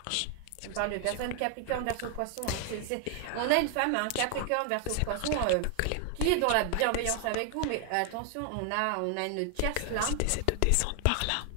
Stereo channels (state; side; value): different; both; correlation 0.00